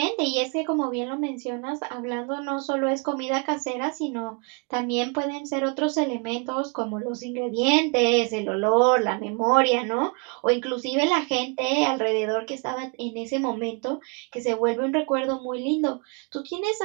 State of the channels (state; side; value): quieter; left; 35.4 dB